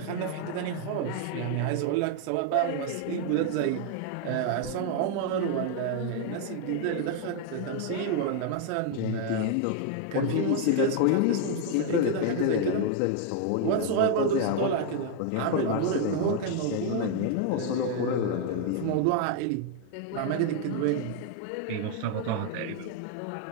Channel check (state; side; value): different; both; correlation 0.00